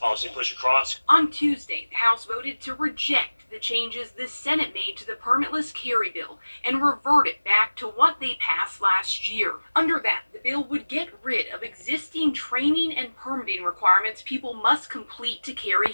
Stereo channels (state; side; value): inverted; both; correlation -1.00